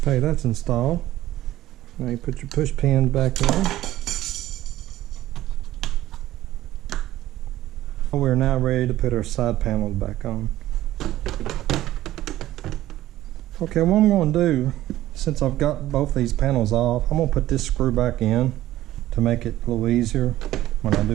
Okay, that's installed. Now you put your push pins back in. We're now ready to put our side panels back on. Okay, what I'm going to do, since I've got both these panels off, I'm going to put this screw back in to make it a little easier when I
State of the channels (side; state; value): left; quieter; 14.7 dB